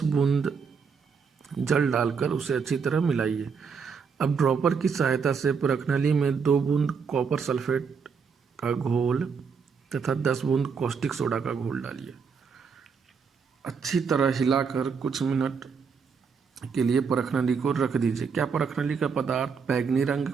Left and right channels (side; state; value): left; quieter; 5.8 dB